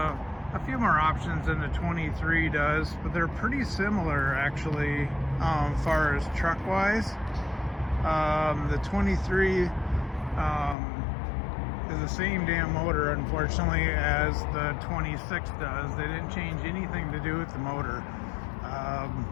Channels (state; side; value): drops out; right; at 10.8 s